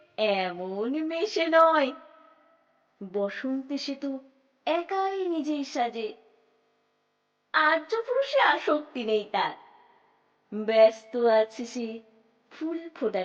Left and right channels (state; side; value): identical; both; correlation 1.00